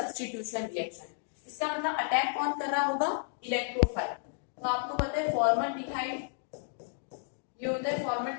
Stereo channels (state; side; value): silent; right; 56 dB below the other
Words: रिएक्शन। इसका मतलब अटैक कौन कर रहा होगा, इलेक्ट्रोफाइल। तो आपको पता है फॉर्मल्डिहाइड, ये होता है